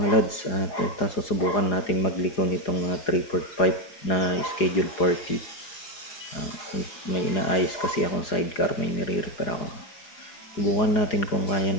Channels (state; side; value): late; right; 4.9 ms